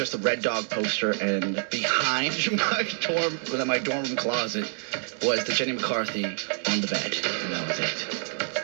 a Red Dog poster, and behind my dorm room closet was the Jenny McCarthy on the bed, and that was it.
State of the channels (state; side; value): silent; left; 60 dB below the other